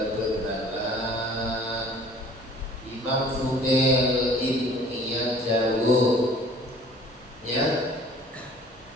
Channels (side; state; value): both; normal; correlation 0.51